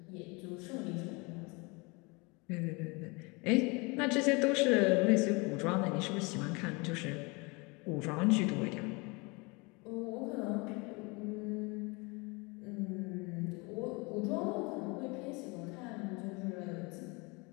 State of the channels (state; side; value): quieter; right; 27.9 dB